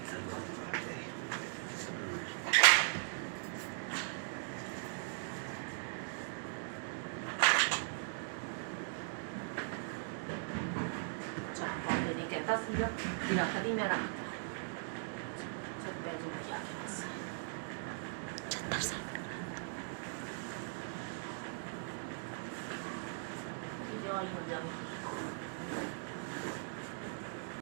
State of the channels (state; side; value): silent; left; digital silence